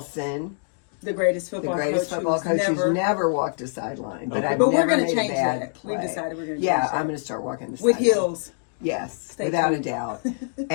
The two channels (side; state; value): right; silent; digital silence